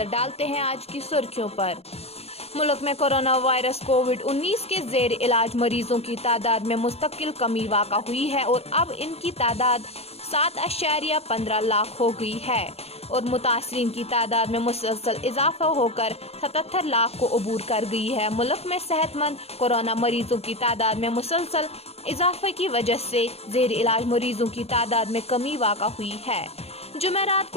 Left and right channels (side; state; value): right; late; 0.30 ms